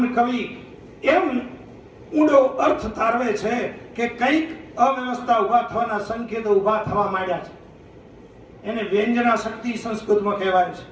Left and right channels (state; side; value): identical; both; correlation 1.00